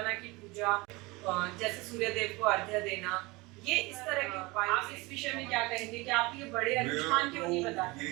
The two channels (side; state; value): left; quieter; 23.9 dB